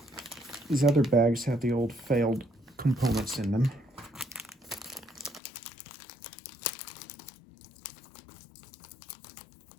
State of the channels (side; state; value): right; drops out; at 5.4 s